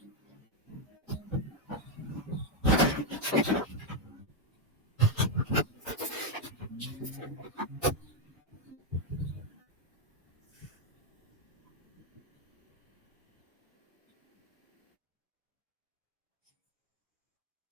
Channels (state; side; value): normal; both; correlation 0.03